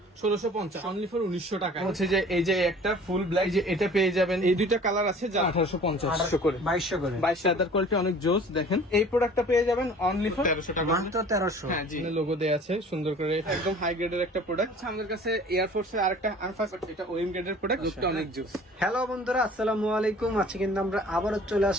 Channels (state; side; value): normal; both; correlation 0.47